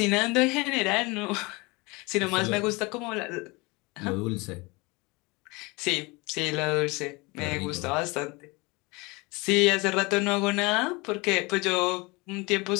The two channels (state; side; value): quieter; right; 25.6 dB